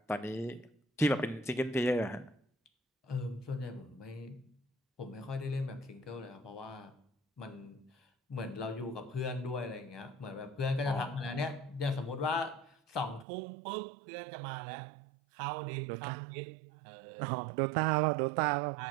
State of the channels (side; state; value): left; drops out; at 13.2 s